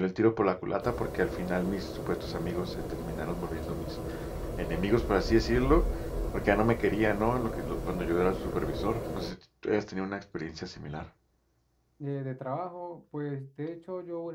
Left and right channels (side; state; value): both; identical; correlation 1.00